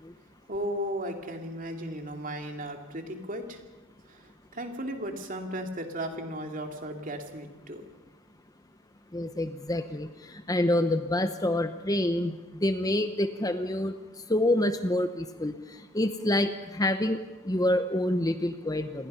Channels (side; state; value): both; normal; correlation 0.67